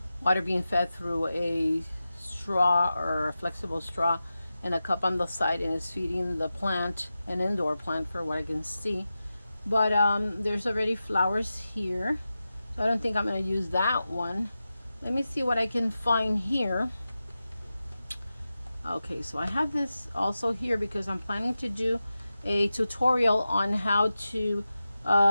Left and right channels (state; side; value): inverted; both; correlation -0.93